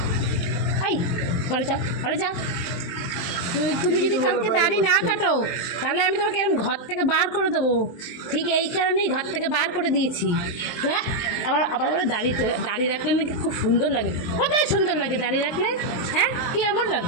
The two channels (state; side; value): late; right; 23 ms